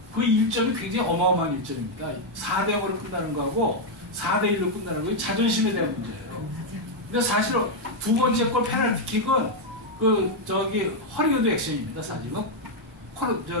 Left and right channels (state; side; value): normal; both; correlation 0.01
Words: 그 1점이 굉장히 어마어마한 1점입니다. 4대 0으로 끝나는 거하고 4대 1로 끝나는 거 자존심에 대한 문제예요. 근데 사실 두 번째 골 페널티킥은 허리우드 액션입니다. 사실은